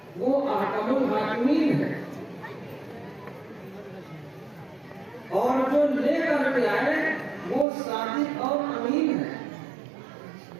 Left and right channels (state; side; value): drops out; left; at 7.7 s